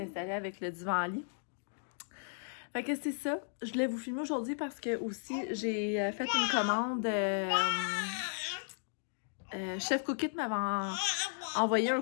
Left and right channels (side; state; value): right; silent; digital silence